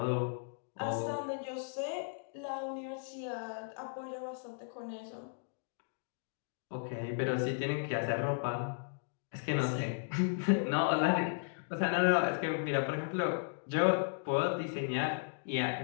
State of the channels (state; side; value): silent; right; digital silence